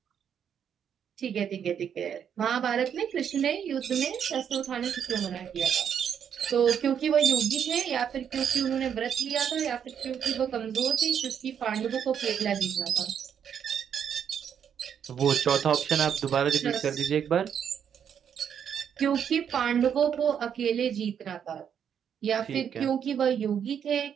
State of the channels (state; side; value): quieter; left; 8.2 dB